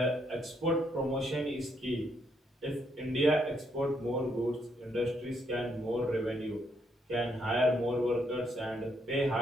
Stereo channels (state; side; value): normal; both; correlation 0.74